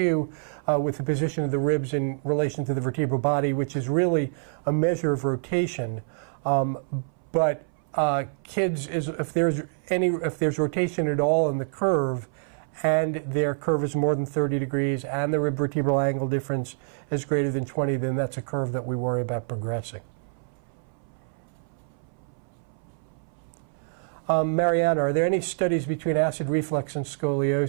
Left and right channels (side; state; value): left; silent; 61 dB below the other